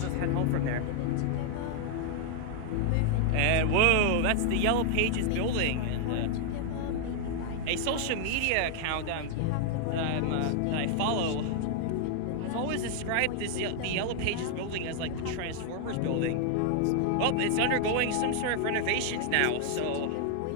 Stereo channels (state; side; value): different; both; correlation 0.00